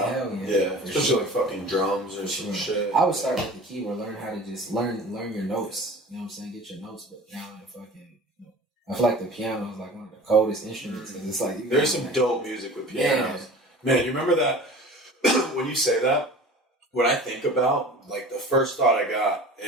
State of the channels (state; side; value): normal; both; correlation 0.40